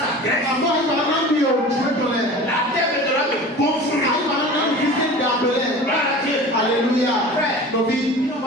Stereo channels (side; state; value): both; normal; correlation 0.38